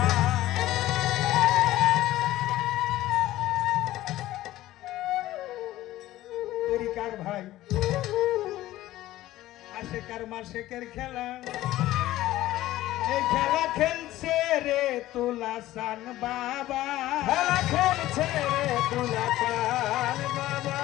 তরিকার ভাই আশেকার মাসেকের খেলা এই খেলা খেলছে রে তুলাসান বাবা খেলা খেলছে রে তুলাসান বাবা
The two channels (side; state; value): right; quieter; 15.5 dB